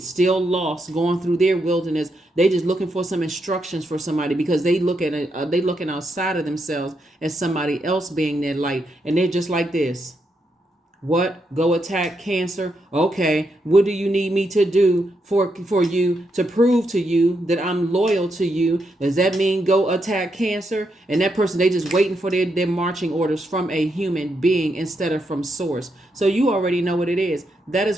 still lost, going through their wilderness. They just looking for some instructions for somebody, because they looking outside of themselves as somebody else being their light, and they're just like this. What? Go attack, Cancer? Okay, what do you need me to do for you to prove to you that I'm loyal to you? Does that mean go attack, Cancer? And that person, they just waiting for their marching orders from a human being instead of from source. So you already know what it is. That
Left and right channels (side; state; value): both; normal; correlation 0.81